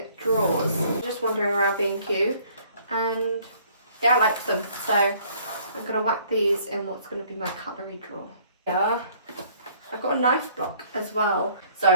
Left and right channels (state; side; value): inverted; both; correlation -0.59